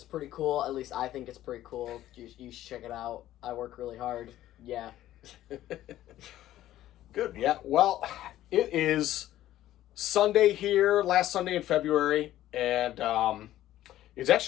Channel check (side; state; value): right; quieter; 13.7 dB